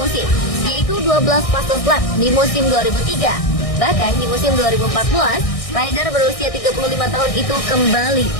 yaitu 12 fase lap di musim 2003. Bahkan di musim 2014, rider berusia 35 tahun itu kembali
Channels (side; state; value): right; late; 1.6 ms